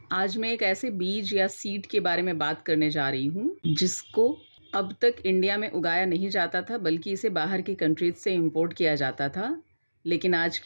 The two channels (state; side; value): inverted; both; correlation -1.00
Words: आज मैं एक ऐसे बीज या सीड के बारे में बात करने जा रही हूँ जिसको अब तक इंडिया में उगाया नहीं जाता था, बल्कि इसे बाहर की कंट्रीज से इंपोर्ट किया जाता था। लेकिन आज